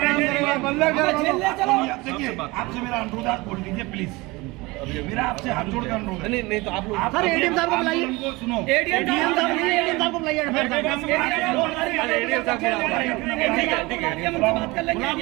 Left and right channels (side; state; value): left; quieter; 22.9 dB